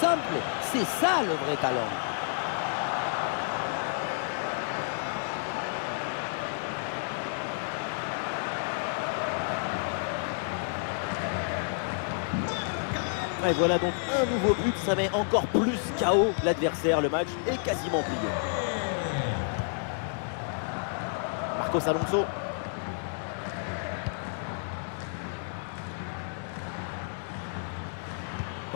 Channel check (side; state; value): right; silent; digital silence